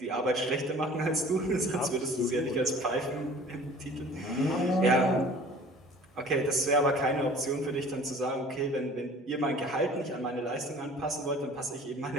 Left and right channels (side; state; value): both; normal; correlation 0.47